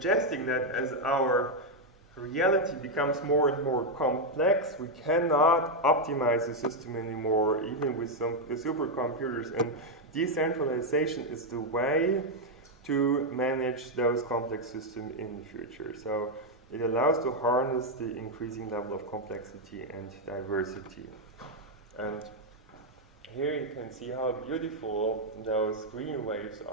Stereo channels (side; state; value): both; normal; correlation 0.01